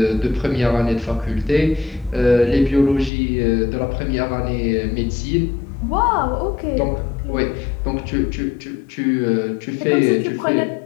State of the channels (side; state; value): right; drops out; at 3.1 s